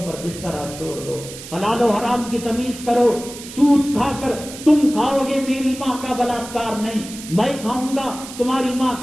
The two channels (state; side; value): noise; right; hiss, 13 dB below the sound